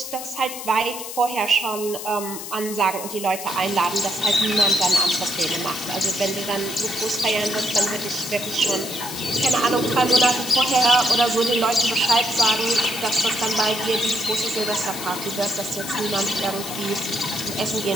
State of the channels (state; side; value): noise; left; hiss, 9 dB below the sound